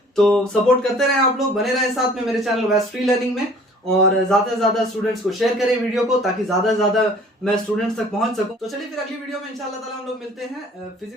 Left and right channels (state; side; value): normal; both; correlation 0.52